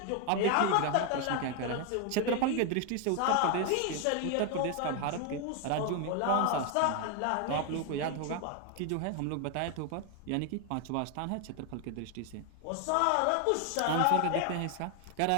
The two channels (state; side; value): different; both; correlation 0.01